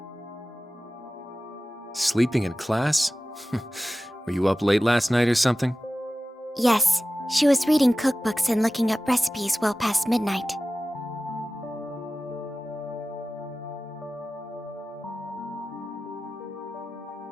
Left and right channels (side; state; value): both; normal; correlation 0.95